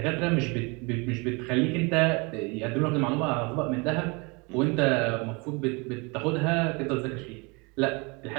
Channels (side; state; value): left; quieter; 29.0 dB